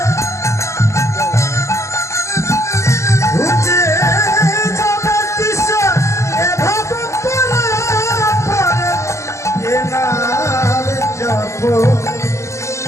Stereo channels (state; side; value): late; right; 0.14 ms